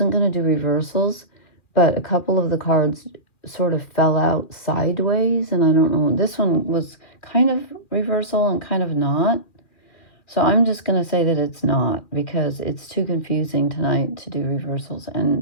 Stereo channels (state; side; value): late; right; 2.3 ms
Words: going to do reversals, but a couple of the cards sort of fell out sideways, and I don't know. This one was kind of reversal and kind of not. So I'm just going to say that it's not, because it's too confusing tonight to do reversals,